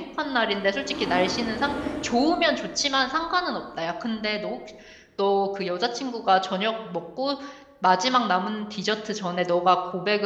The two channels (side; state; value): both; identical; correlation 1.00